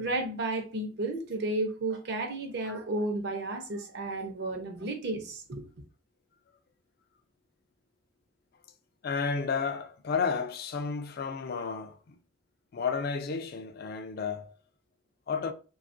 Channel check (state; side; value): normal; both; correlation -0.07